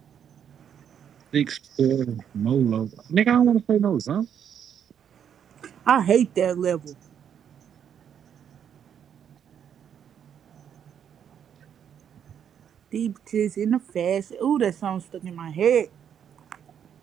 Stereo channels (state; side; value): quieter; left; 8.6 dB